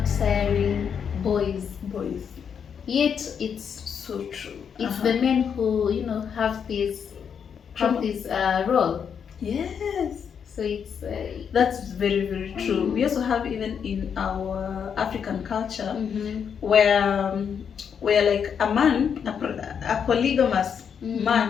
siring boys. Yet it's so true. It's the men who have this role. Yes. So it's that's very, very true. We also have, even in our African culture, where like a man, a polygamous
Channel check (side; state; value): right; quieter; 7.3 dB